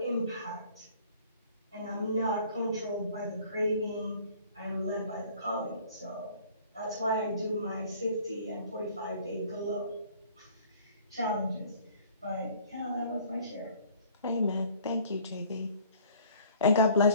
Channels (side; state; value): both; inverted; correlation -0.53